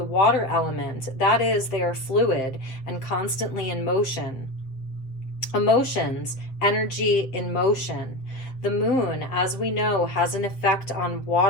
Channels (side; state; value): right; late; 7.5 ms